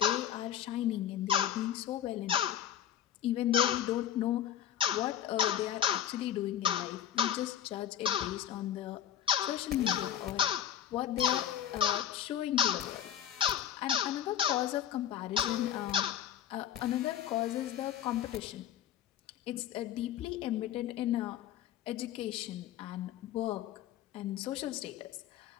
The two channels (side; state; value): right; quieter; 10.7 dB